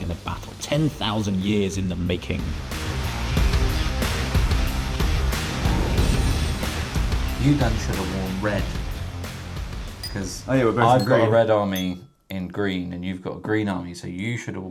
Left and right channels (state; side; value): identical; both; correlation 1.00